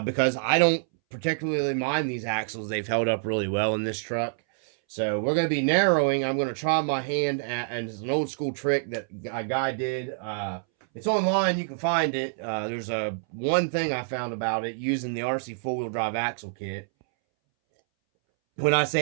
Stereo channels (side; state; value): left; silent; 60 dB below the other